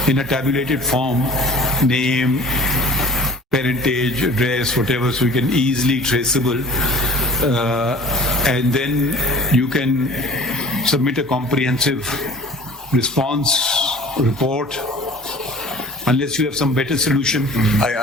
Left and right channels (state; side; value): normal; both; correlation 0.45